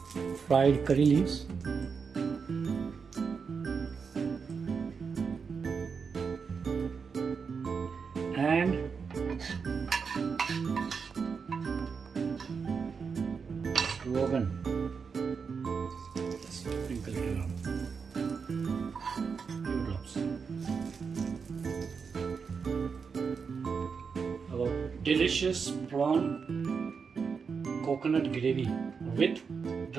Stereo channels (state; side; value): quieter; left; 5.7 dB